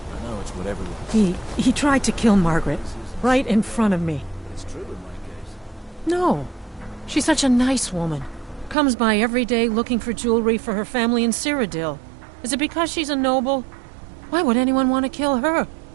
I know it's whatever. He tried to kill Margaret, right in front of me. It's true in my case. No. She's such a nice woman. Comes by every day looking for jewelry for her family in Cyrodiil. Is it because she's a noble? Why would anyone want to kill her?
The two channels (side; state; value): left; drops out; at 8.8 s